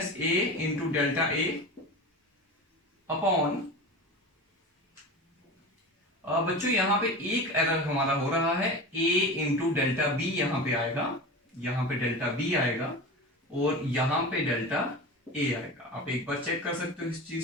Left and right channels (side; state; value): both; normal; correlation 0.30